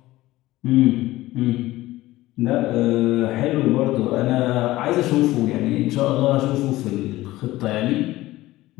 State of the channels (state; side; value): quieter; right; 17.3 dB